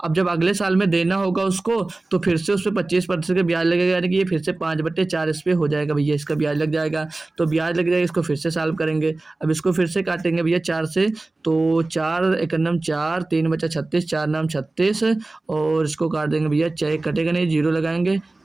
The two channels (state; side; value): quieter; left; 3.1 dB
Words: अब जब अगले साल में देना होगा उसको, तो फिर से उस पर 25% का ब्याज लगेगा, यानी कि ये फिर से 5/4 इस पे हो जाएगा भैया, इसका ब्याज लग जाएगा। तो ब्याज लग जाएगा, इसको फिर से सॉल्व करेंगे। अब इसको फिर से काटेंगे भैया 4 से, तो 4 एकनम 4, 3 बचा 36, 4 नाम 36, और इसको काट देंगे भैया, 6 कटेगा नहीं, 0 लगाएंगे,